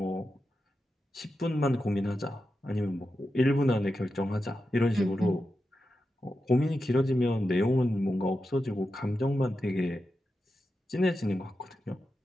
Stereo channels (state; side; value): normal; both; correlation 0.90